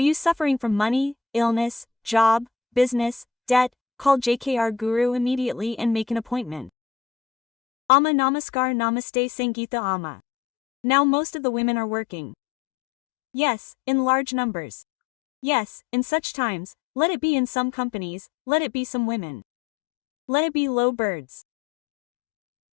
suffering from money, illness, job, business, debt? Call JKR Guru immediately and make an appointment. Amma Namaskar Namaste Sangeeta Amma. Now most of the women are working. Yes, in large numbers. Yes, in such times, let it be in some companies, let it be some women. Let it be low birds.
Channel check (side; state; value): right; drops out; at 6.7 s